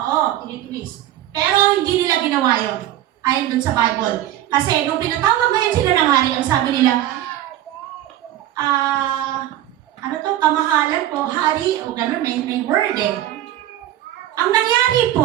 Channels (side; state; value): left; quieter; 13.2 dB